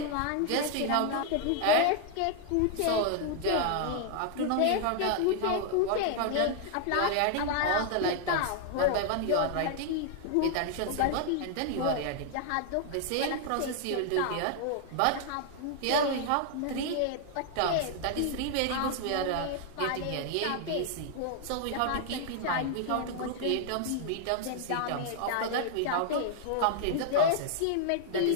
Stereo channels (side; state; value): both; different; correlation 0.00